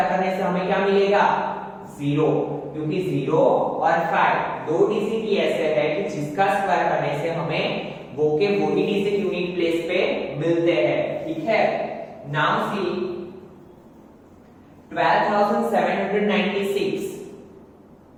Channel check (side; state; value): both; identical; correlation 1.00